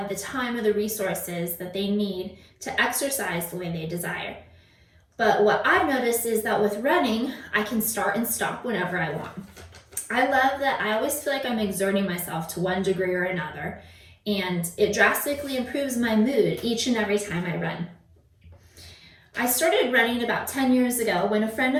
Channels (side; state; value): both; identical; correlation 1.00